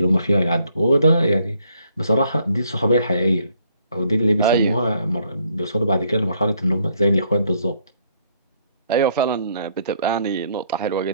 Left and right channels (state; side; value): inverted; both; correlation -0.69